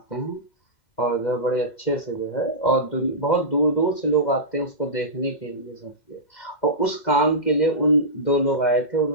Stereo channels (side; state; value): right; late; 2.0 ms